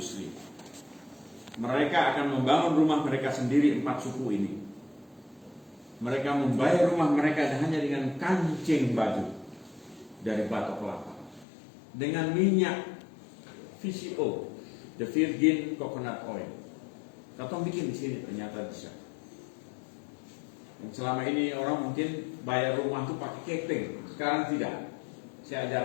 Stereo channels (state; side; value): drops out; right; at 11.5 s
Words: mereka akan membangun rumah mereka sendiri, 4 suku ini. Mereka membayar rumah mereka hanya dengan kancing batu dari batok kelapa, dengan minyak VCO, the Virgin Coconut Oil. Katong bikin di sini ternyata bisa. Yang selama ini orang mungkin bayar rumah itu pakai keping, sekarang tidak. Saya